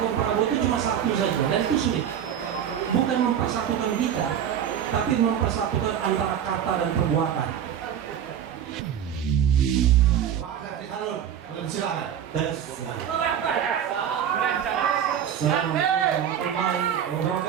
Prabowo itu cuma satu saja, dan itu sulit. Bukan mempersatukan kita, tapi mempersatukan antara kata dan perbuatan. Silakan. Assalamualaikum warahmatullahi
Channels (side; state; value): left; quieter; 9.2 dB